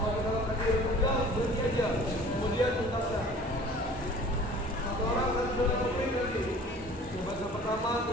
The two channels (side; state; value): both; normal; correlation 0.47